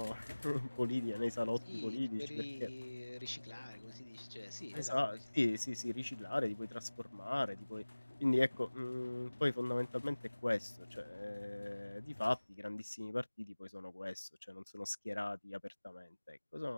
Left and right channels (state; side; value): inverted; both; correlation -1.00